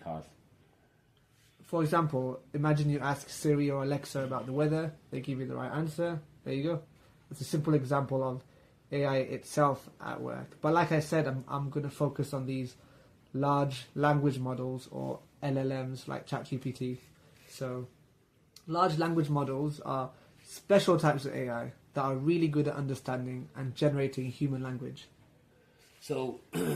For example, imagine you ask Siri or Alexa about the weather, they give you the right answer, there you go. It's a simple example of AI itself at work. But like I said, I'm going to focus on these large language models, or LLMs, like ChatGPT. So large language models are special types of AI that are really good at understanding and generating human language. So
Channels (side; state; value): both; identical; correlation 1.00